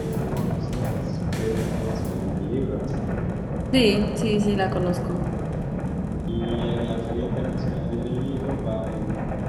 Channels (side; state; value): both; identical; correlation 1.00